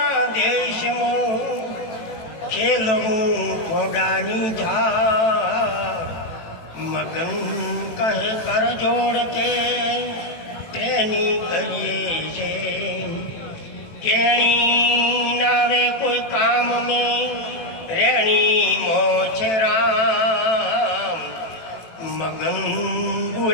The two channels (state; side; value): late; right; 18 ms